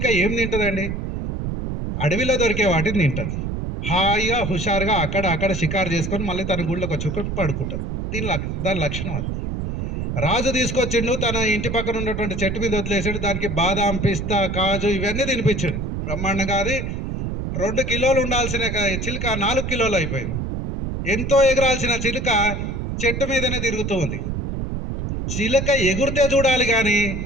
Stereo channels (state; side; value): noise; right; rumble, 3 dB below the sound